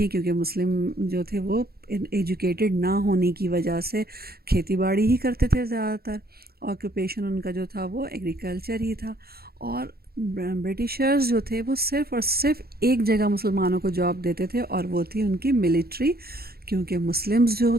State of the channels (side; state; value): left; late; 0.45 ms